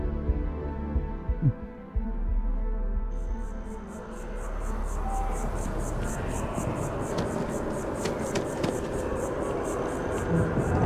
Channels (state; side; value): identical; both; correlation 1.00